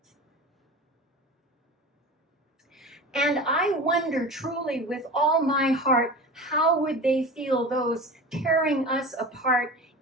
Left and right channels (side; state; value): both; normal; correlation 0.32